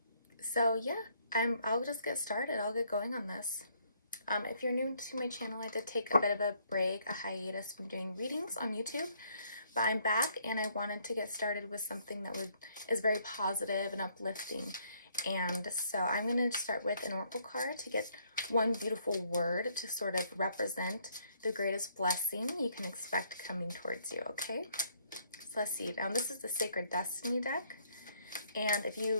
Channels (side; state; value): both; inverted; correlation -0.67